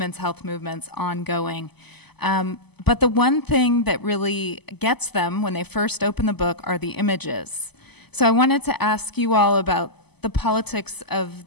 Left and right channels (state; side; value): late; right; 0.99 ms